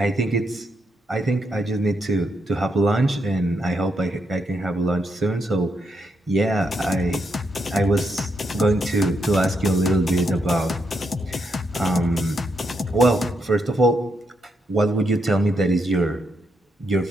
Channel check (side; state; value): both; normal; correlation 0.79